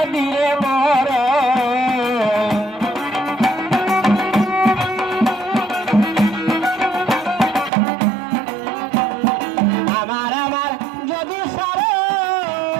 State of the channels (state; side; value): drops out; left; at 7.7 s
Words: দিলে মর আমার আমার যদি সারো